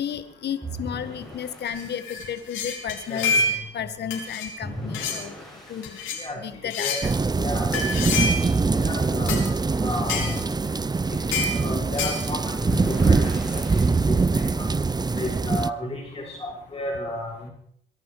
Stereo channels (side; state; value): both; normal; correlation 0.61